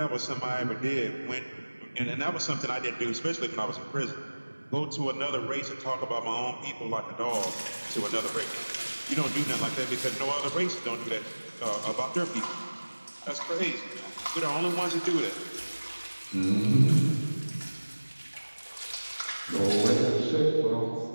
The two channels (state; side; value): inverted; both; correlation -1.00